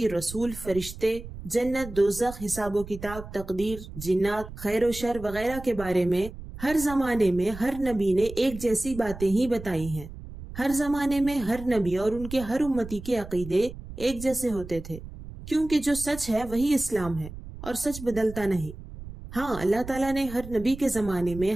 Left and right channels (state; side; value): noise; right; rumble, 13 dB below the sound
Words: رسول، فرشتے، جنت، دوزخ، حساب و کتاب، تقدیر، جنات، خیر و شر وغیرہ کے بارے میں ہر زمانے میں ہر نبی نے ایک جیسی باتیں ہی بتائی ہیں۔ ہر زمانے میں ہر نبی اور ان کے ہر امتی کے عقیدے ایک جیسے ہوتے تھے، کیونکہ جو سچ ہے وہی اسلام ہے اور سچ بدلتا نہیں۔ ہاں، اللہ تعالیٰ نے ہر نبی کے زمانے میں